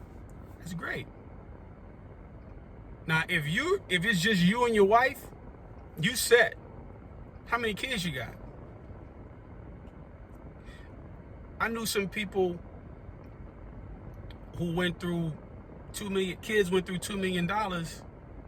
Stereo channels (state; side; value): identical; both; correlation 1.00